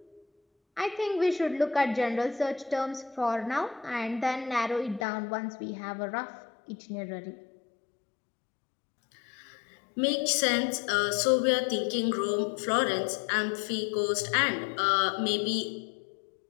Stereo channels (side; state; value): right; drops out; at 5.1 s